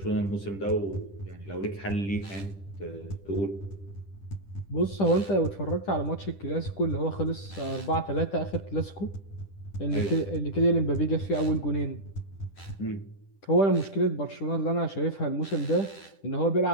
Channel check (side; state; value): right; late; 10 ms